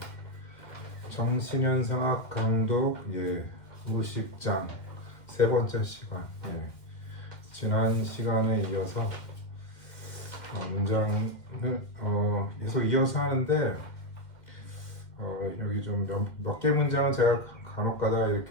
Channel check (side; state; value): right; late; 2.1 ms